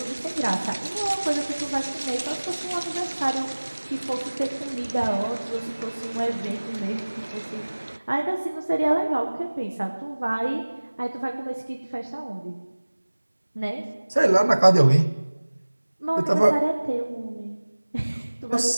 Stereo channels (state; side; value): inverted; both; correlation -1.00